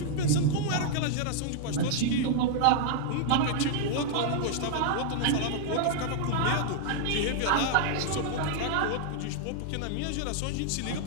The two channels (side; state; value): both; different; correlation -0.01